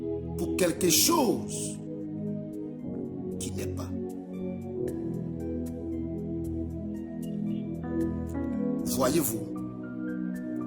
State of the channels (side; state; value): both; identical; correlation 1.00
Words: pour quelque chose qui n'est pas. Voyez-vous,